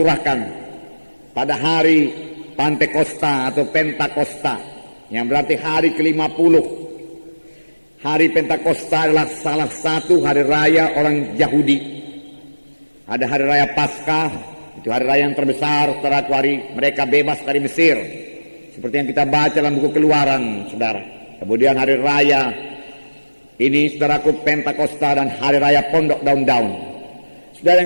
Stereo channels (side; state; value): both; inverted; correlation -1.00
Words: pada hari Pantekosta atau Pentakosta, yang berarti hari ke-50. hari Pentakosta adalah salah satu hari raya orang Yahudi. Ada hari raya Paskah, itu hari raya yang terbesar, saudaraku, hari mereka bebas dari Mesir. Seperti yang kita baca dalam buku Keluaran, saudara. Kemudian hari raya ini, saudaraku, Pentakosta dan hari raya Pondok Daun-Daun. Saudara